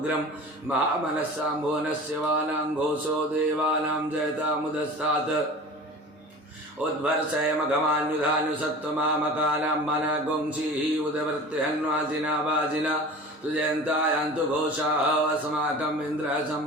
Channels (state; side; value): normal; both; correlation 0.38